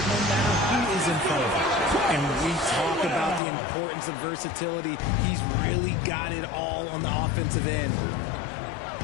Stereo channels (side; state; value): right; drops out; at 3.4 s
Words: no matter who is in front of him. And we talk about the importance of versatility. He's really got it all on the offensive end.